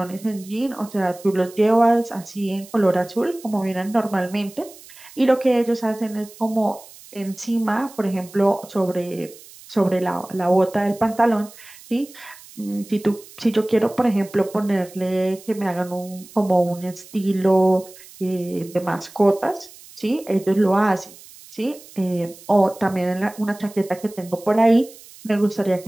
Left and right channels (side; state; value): right; noise; hiss, 21 dB below the sound